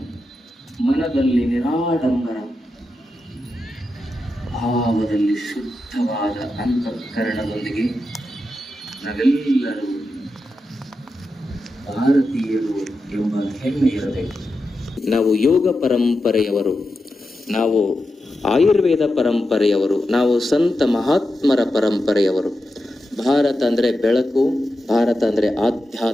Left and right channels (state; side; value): normal; both; correlation 0.89